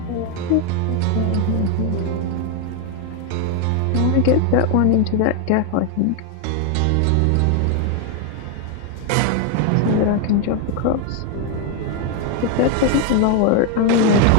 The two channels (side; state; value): both; different; correlation 0.01